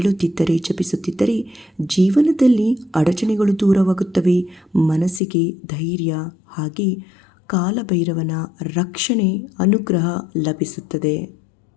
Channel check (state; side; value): drops out; right; at 5.2 s